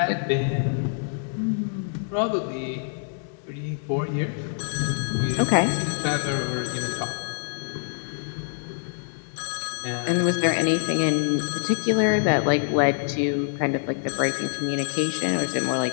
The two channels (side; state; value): right; silent; digital silence